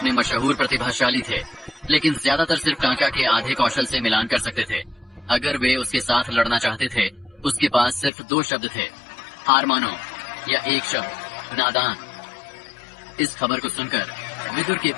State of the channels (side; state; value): right; drops out; at 8.1 s